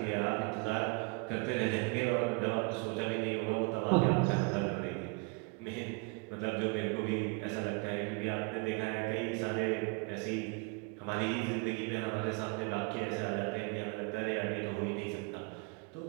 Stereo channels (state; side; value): quieter; left; 31.6 dB